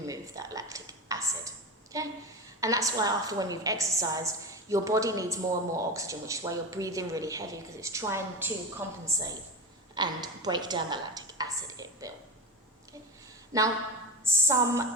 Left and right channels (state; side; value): normal; both; correlation 0.24